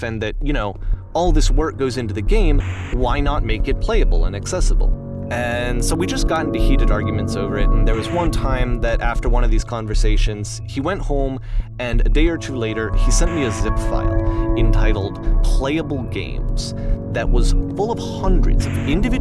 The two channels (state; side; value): identical; both; correlation 1.00